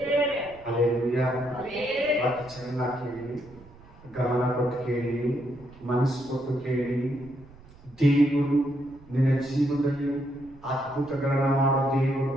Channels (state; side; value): noise; right; rumble, 23 dB below the sound